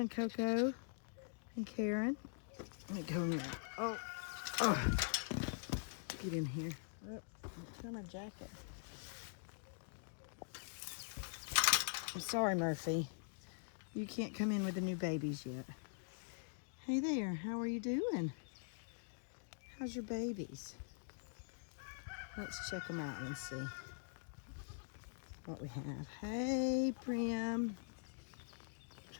Coco and Karen? Let me go in. Oh, get in here. Oh, don't tear my jacket. I'm sorry, Murphy. You can't come in with the new babies yet. Hey there, how are you doing? How's your babies? Let's check them out and see what we have. Hey, Prim.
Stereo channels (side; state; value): right; silent; digital silence